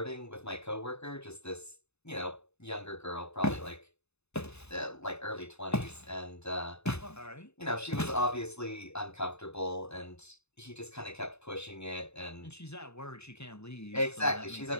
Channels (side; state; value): right; late; 0.80 ms